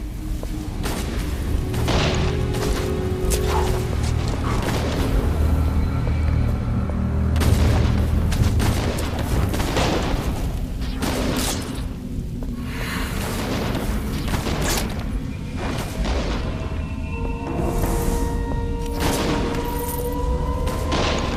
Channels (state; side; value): identical; both; correlation 1.00